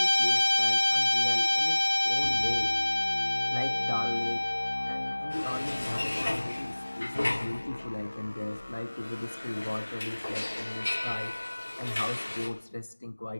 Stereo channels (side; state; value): both; inverted; correlation -1.00